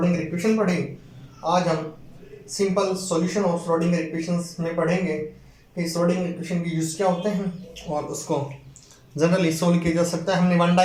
इक्वेशन पढ़ी, आज हम simple solution of Schrodinger equations में पढ़ेंगे कि श्रोडिंगर इक्वेशन के यूज क्या होते हैं और उसको जनरली सोल्व किया जा सकता है। हमने 1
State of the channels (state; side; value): identical; both; correlation 1.00